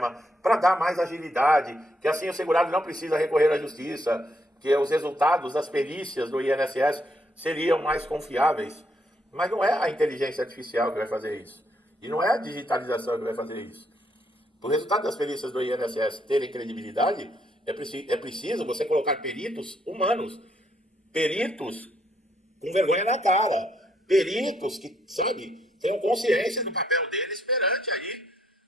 para dar mais agilidade, que assim o segurado não precisa recorrer à justiça, que os resultados das perícias do INSS seriam mais confiáveis. Mas não é a inteligência artificial que vai fazer isso. E não é a digitalização que vai fazer isso. Para o resultado das perícias do INSS terem credibilidade, é preciso você colocar peritos humanos. Peritos com vergonha na cara. Peritos que, tenham consciência do papel deles perante aí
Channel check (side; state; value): both; normal; correlation 0.73